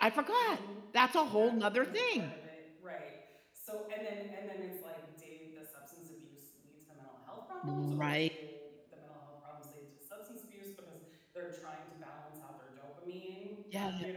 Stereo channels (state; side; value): identical; both; correlation 1.00